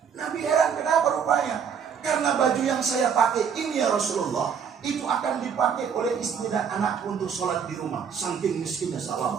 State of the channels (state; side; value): quieter; left; 7.1 dB